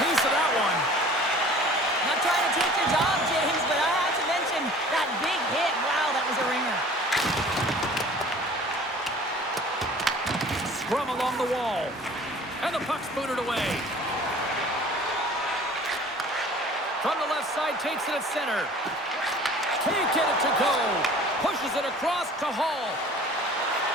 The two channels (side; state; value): both; normal; correlation 0.47